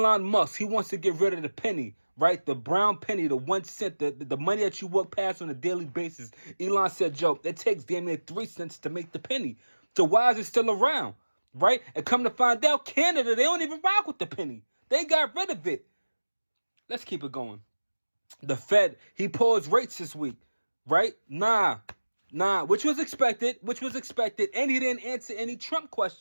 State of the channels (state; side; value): inverted; both; correlation -1.00